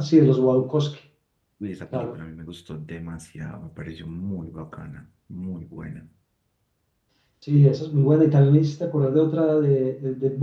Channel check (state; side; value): identical; both; correlation 1.00